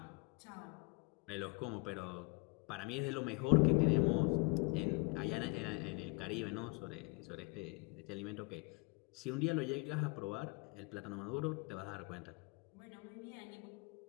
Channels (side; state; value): right; quieter; 30.9 dB